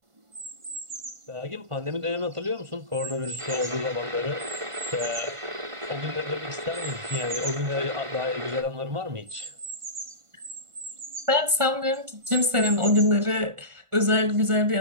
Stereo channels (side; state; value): left; late; 1.5 ms